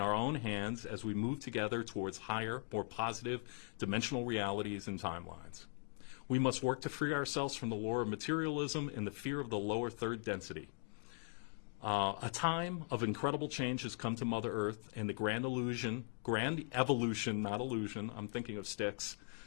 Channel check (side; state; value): right; silent; 51 dB below the other